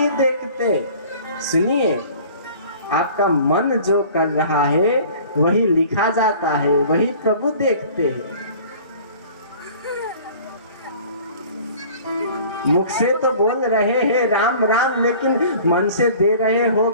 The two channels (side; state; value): both; inverted; correlation -0.47